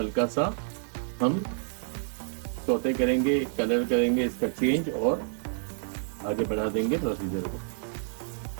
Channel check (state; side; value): silent; left; 59 dB below the other